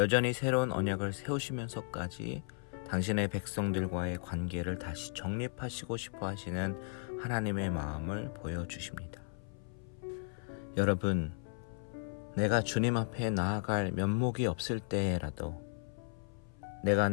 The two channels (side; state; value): right; silent; 54 dB below the other